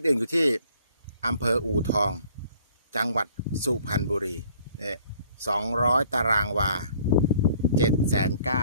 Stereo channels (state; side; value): inverted; both; correlation -0.58